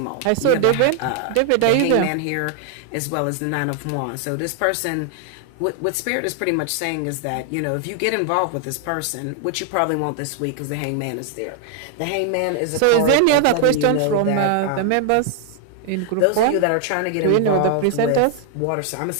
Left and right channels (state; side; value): different; both; correlation 0.00